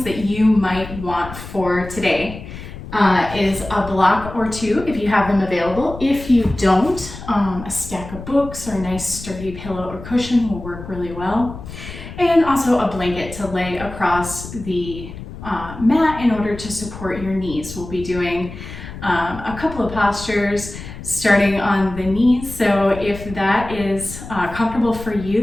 that you might want for today is a block or two if you have them available. If you don't, a stack of books or a nice sturdy pillow or cushion will work really well. And also a blanket to lay across the mat in order to support your knees. We'll be doing a couple of postures starting on the knees. So if that is comfortable for you,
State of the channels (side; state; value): left; noise; rumble, 12 dB below the sound